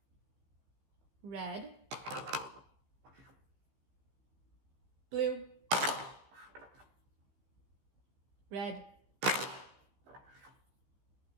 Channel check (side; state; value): left; late; 15 ms